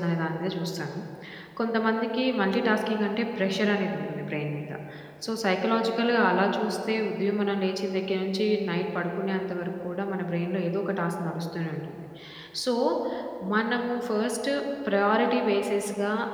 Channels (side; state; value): both; identical; correlation 1.00